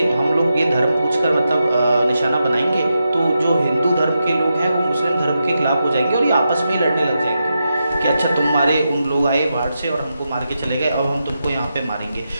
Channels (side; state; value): both; inverted; correlation -0.87